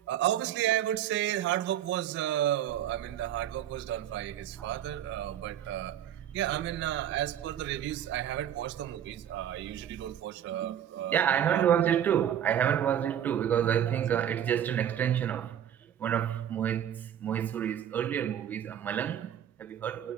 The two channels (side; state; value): left; quieter; 10.2 dB